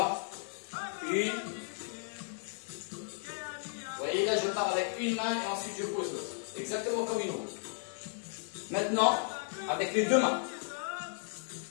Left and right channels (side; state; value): right; silent; 55 dB below the other